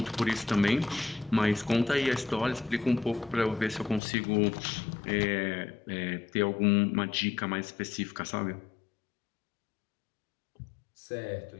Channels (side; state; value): right; drops out; at 4.0 s